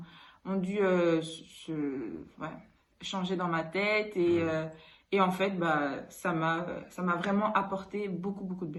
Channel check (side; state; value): both; identical; correlation 1.00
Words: dû changer dans ma tête, et en fait ça m'a vraiment apporté beaucoup de